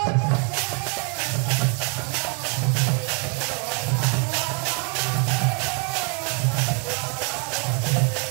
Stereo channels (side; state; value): left; quieter; 36.8 dB